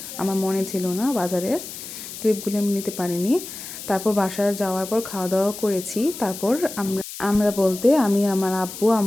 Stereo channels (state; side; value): noise; left; hiss, 11 dB below the sound